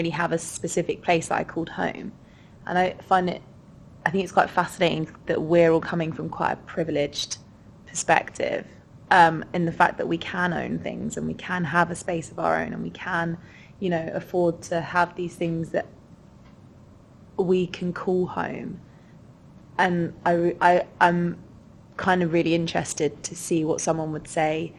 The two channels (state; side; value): identical; both; correlation 1.00